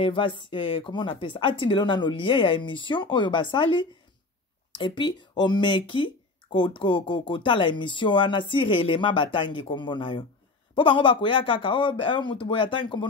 comment on appelle ça? Atindelo nano lien ya émission oyo basali et puis o meki ko tala émission ana si réellement batangi kombo na yo. Po bango bakoya kaka mutu boya tangi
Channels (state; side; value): quieter; right; 3.5 dB